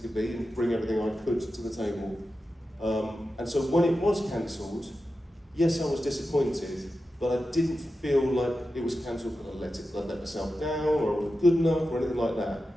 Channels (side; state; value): both; normal; correlation 0.91